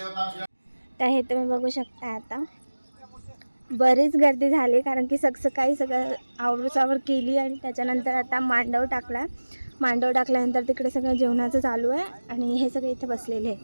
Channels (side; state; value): both; inverted; correlation -1.00